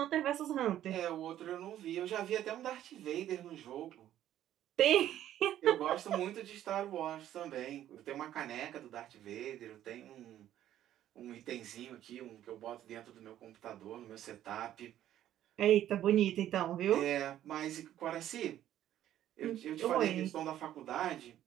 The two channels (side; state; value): left; quieter; 12.0 dB